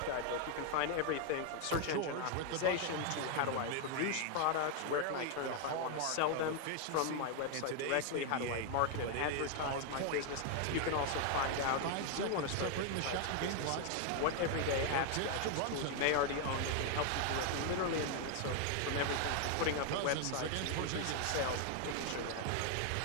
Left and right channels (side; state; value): both; different; correlation 0.00